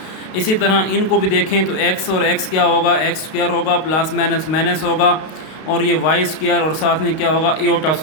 इसी तरह इनको भी देखें तो x और x क्या होगा? x स्क्वायर होगा, प्लस माइनस माइनस होगा, और ये y स्क्वायर और साथ में क्या होगा? इयोटा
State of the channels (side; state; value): right; late; 32 ms